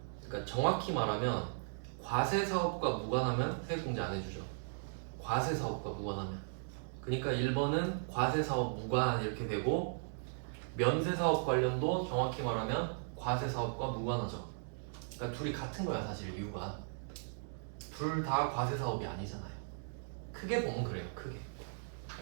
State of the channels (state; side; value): silent; left; digital silence